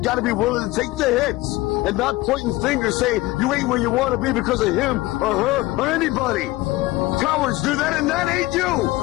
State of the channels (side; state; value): right; quieter; 19.0 dB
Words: gotta be willing to take the hits and not pointing fingers saying you ain't where you want to be because of him or her or anybody. Cowards do that, and that ain't you.